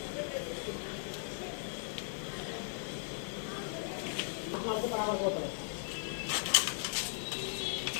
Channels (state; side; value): silent; right; digital silence